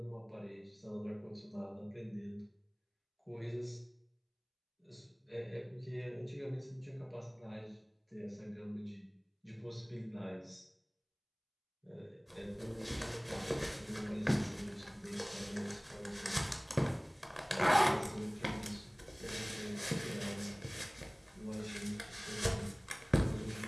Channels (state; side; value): identical; both; correlation 1.00